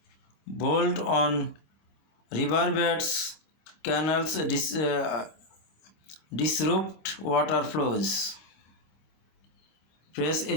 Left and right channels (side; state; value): right; late; 26 ms